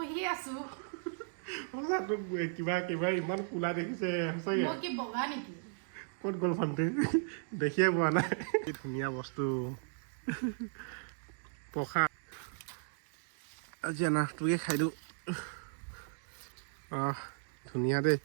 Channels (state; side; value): silent; left; digital silence